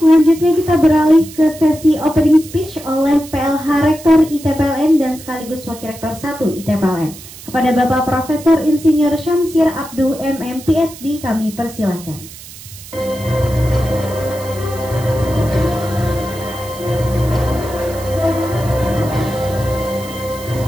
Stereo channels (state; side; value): noise; right; hiss, 16 dB below the sound